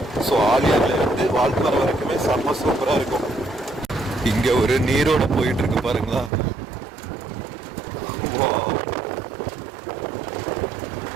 ஸோ ஆலியார்ல இருந்து வால்பாறை வரைக்குமே செம்ம சூப்பரா இருக்கும். இங்க ஒரு நீரோட போயிட்டு இருக்கு பாருங்களா.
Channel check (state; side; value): drops out; left; at 6.3 s